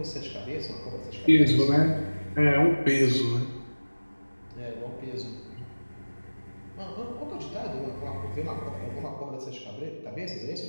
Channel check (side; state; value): both; inverted; correlation -1.00